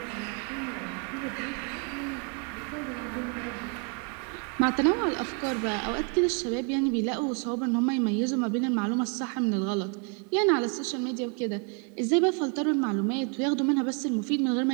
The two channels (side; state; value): left; quieter; 36.3 dB